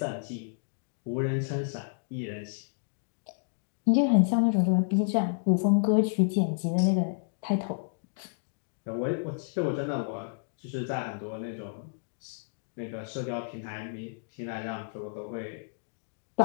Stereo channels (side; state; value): right; silent; digital silence